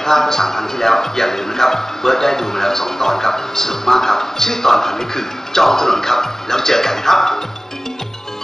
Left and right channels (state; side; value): normal; both; correlation 0.98